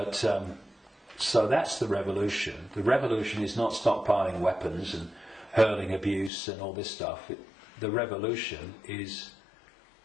so that's the revolution. The revolution is not stockpiling weapons and hurling abuse and all this stuff. The revolution is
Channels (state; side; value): drops out; right; at 6.3 s